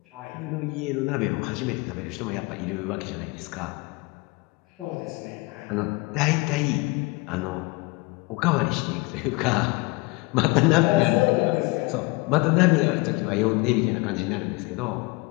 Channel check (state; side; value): quieter; right; 24.5 dB